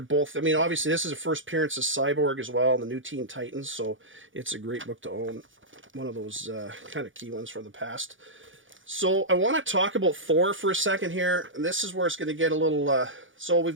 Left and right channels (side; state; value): left; late; 0.57 ms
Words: I mean, obviously, this is a first appearance of Cyborg as well, and the New Teen Titans. So it's a great book to own. One of those kind of key ones from the past. So I want to talk about Thor for a second here. And this is where it's going to get a little... so we've